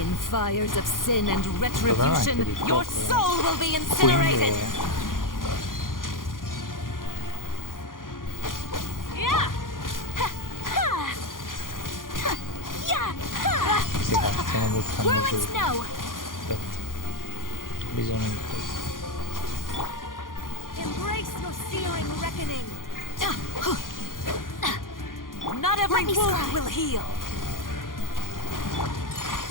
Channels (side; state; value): right; late; 0.90 ms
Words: fires of sin and retribution, your soul will be incinerated. Sì, stiamo buttando giù. Aspetta. Bisogno di questo. Embrace your searing reckoning. Not every wound will heal.